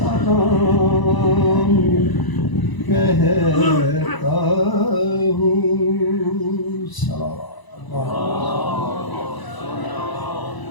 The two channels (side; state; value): right; late; 1.0 ms